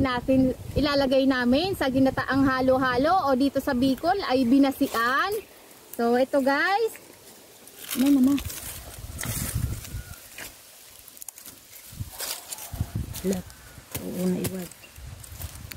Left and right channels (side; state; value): both; identical; correlation 1.00